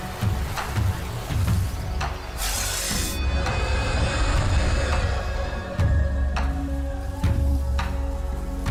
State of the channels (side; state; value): both; identical; correlation 1.00